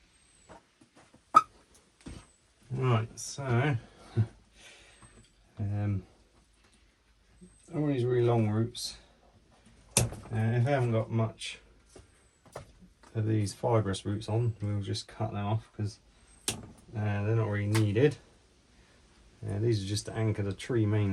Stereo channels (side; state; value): both; identical; correlation 1.00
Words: Right, so all these really long roots, if I haven't got much of these fibrous roots on, we'll just cut them off because they're not really needed. These are just to anchor the tree